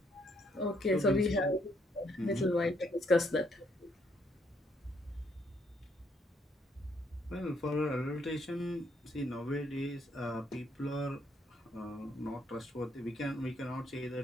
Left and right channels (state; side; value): normal; both; correlation 0.71